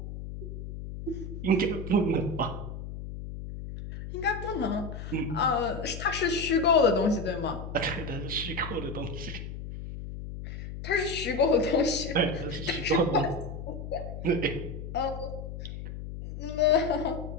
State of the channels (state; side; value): noise; left; hum, 8 dB below the sound